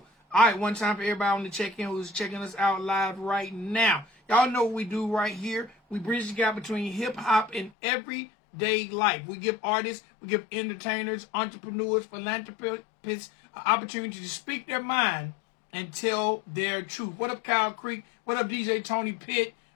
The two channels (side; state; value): right; drops out; at 7.7 s